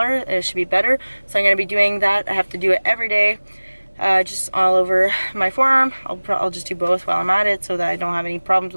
It should be better. So I'm gonna be doing that. I have to do it every day, just all over my forearm. I'll just do both while I'm at it so that I don't have any problems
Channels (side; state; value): both; inverted; correlation -1.00